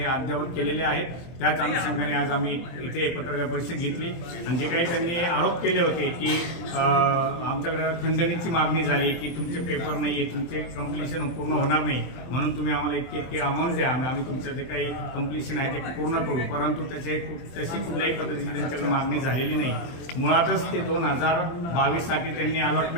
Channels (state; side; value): late; right; 24 ms